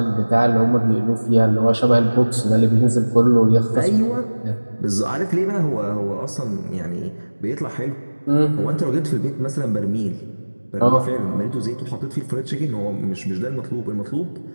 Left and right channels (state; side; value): inverted; both; correlation -1.00